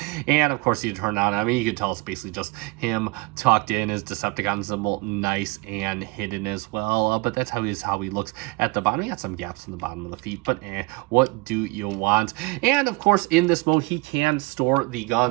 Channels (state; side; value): quieter; left; 25.1 dB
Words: And of course you turn on, I mean, you can tell it's basically just him tucked in, his Decepticon symbol nice and hidden as well. But that's how he looks at the bottom. He got some gaps in the bottom of the feet, but what do you want? And of course in this mode he can store the